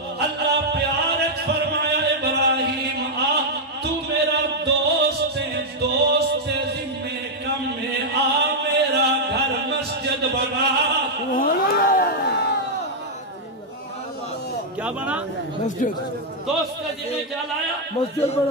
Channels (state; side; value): normal; both; correlation -0.03